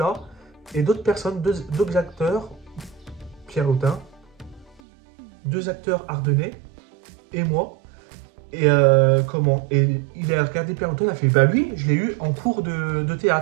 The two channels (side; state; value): left; drops out; at 4.8 s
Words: et d'autres personnes, d'autres acteurs, Pierre Lotin, 2 acteurs ardennais et moi. Et comment? Et il a regardé Pierre Lotin, il a fait, bah lui, je l'ai eu en cours de